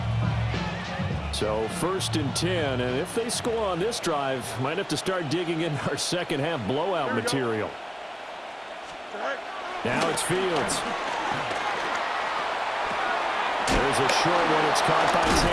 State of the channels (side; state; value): both; identical; correlation 1.00